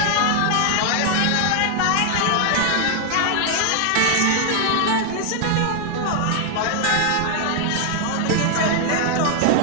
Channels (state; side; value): different; both; correlation 0.00